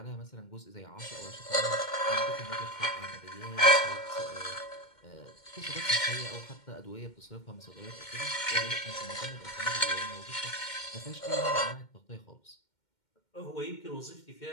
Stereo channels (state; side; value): late; right; 2.1 ms